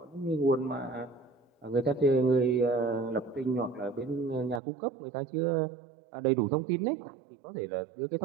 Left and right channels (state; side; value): drops out; left; at 4.6 s